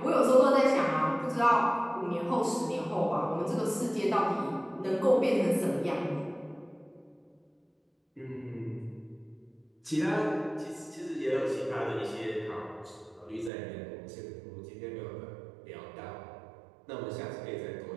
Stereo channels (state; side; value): drops out; left; at 13.5 s